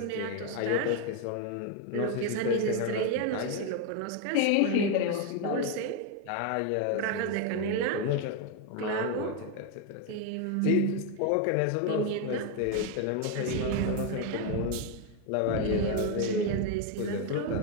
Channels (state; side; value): different; both; correlation 0.01